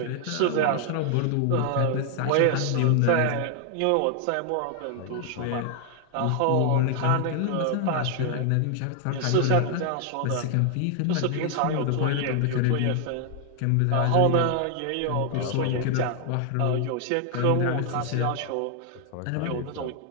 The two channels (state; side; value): different; both; correlation 0.00